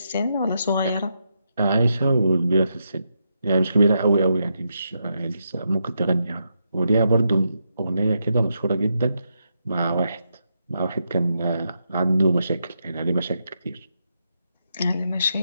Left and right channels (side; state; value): both; inverted; correlation -0.83